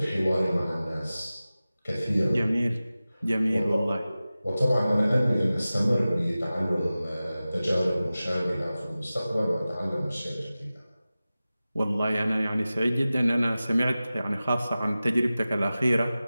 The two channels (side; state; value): both; inverted; correlation -0.96